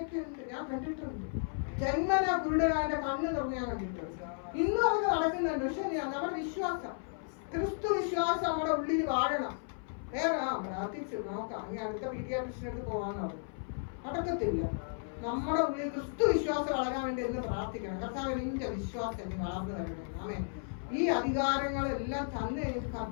ഉണ്ട്, ഞാൻ കണ്ടിട്ടുണ്ട്. ജന്മന കുരുടനാന്റെ കണ്ണ് തുറന്ന് ഞാൻ കണ്ടിട്ടുണ്ട്. ഇന്നും അതൊക്കെ നടക്കുന്നുണ്ട്. പക്ഷെ നമ്മുടെ വിശ്വാസം, ക്രിസ്തു വിശ്വാസം നമ്മുടെ ഉള്ളിൽ വാഴണം. വേറെ പ്രാർത്ഥിച്ചു നോക്കാം, ഇനി അടുത്ത പീഡിയാട്രിഷ്യനടുത്ത് പോകാന്ന് പറഞ്ഞു, നടക്കത്തില്ല. നമ്മുടെ ഉള്ളിൽ ക്രിസ്തു വിശ്വാസം വളരാൻ വേണ്ടി എന്ന് പ്രാർത്ഥിക്കണം. കർത്താവ് നിന്റെ വിശ്വാസം നീ വളർന്നു വരണേ. ആമേൻ. ഈ അധികാരങ്ങളെല്ലാം തന്നു കഴിഞ്ഞിട്ട്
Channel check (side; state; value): right; silent; 55 dB below the other